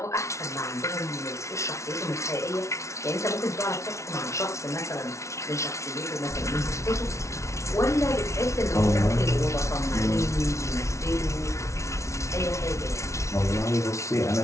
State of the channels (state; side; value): late; right; 0.14 ms